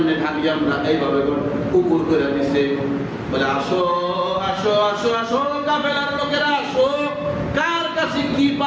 ঢালি আমরা এইভাবে উপর করে দিছে। বলে আসো আসো আসো আসো কাফেলার লোকেরা আসো, কার কাছে কি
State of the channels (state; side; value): identical; both; correlation 1.00